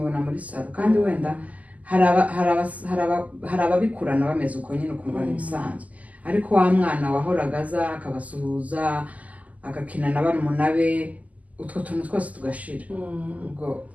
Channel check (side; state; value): left; late; 0.074 ms